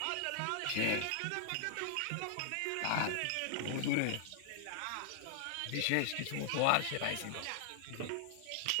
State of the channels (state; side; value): different; both; correlation -0.01